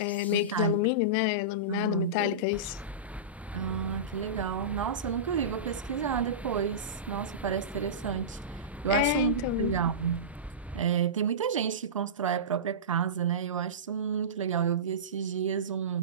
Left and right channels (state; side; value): normal; both; correlation -0.20